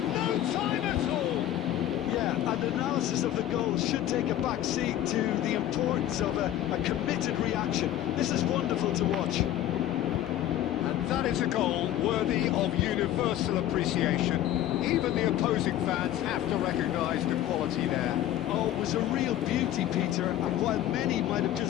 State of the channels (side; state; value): right; quieter; 12.4 dB